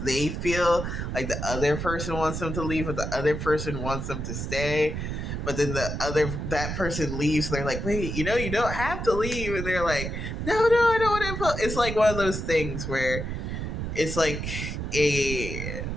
feel like the other person wants them to leave, but the other person wants them to stay. But then that person leaves. They're like, wait, you don't have to leave, and they're like, no, I don't want to. It's like one of those things where it's a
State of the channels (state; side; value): noise; right; rumble, 4 dB below the sound